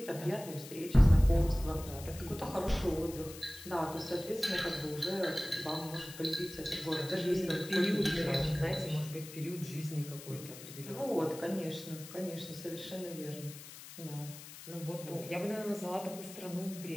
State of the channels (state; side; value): noise; left; hiss, 14 dB below the sound